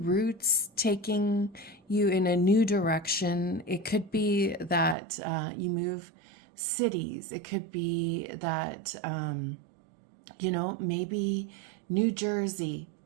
taking you in a new direction. It could be that you move cities. It could be that, maybe New Jersey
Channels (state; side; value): drops out; left; at 5.0 s